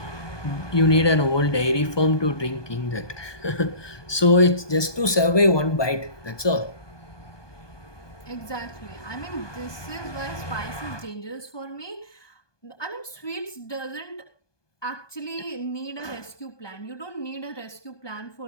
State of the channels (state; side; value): late; right; 1.2 ms